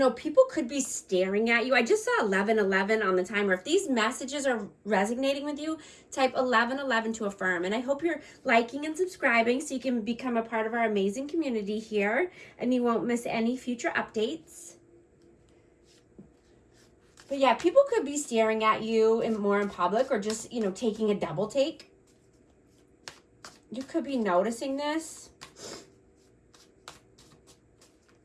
People could be staring at you. I just saw 1111 on the timer. If these messages are resonating with you, type 1111 to affirm. And I hope you're liking and subscribing so you can become a part of our amazing community here and you won't miss any future updates. But yeah, people could be staring at you more in public, or just, taking a double take. You could be noticing this.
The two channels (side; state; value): both; identical; correlation 1.00